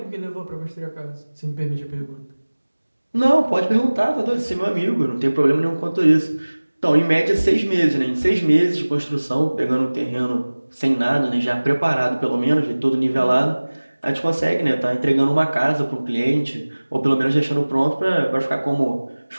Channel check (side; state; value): both; inverted; correlation -1.00